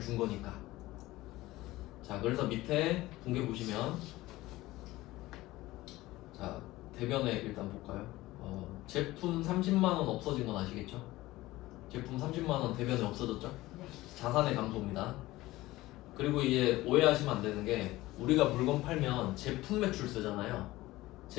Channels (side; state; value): right; quieter; 18.0 dB